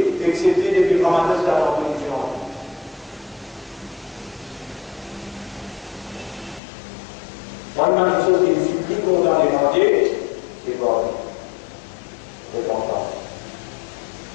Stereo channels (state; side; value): drops out; right; at 6.6 s